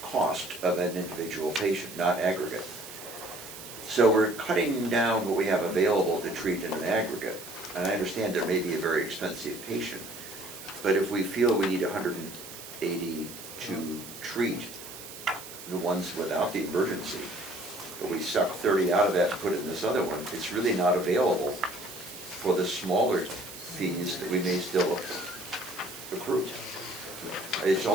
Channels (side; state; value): right; noise; hiss, 13 dB below the sound